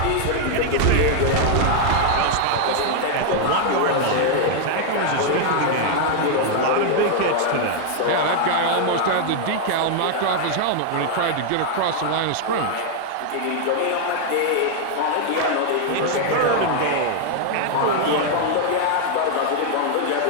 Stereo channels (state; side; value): different; both; correlation 0.00